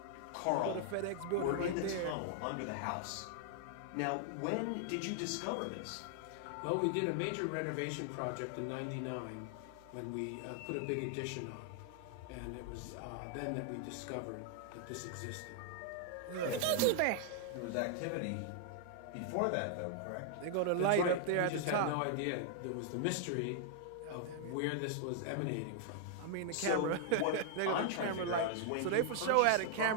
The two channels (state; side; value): different; both; correlation 0.00